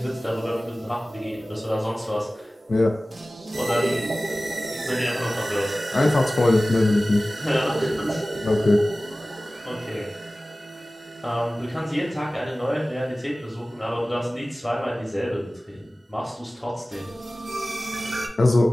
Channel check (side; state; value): both; normal; correlation 0.97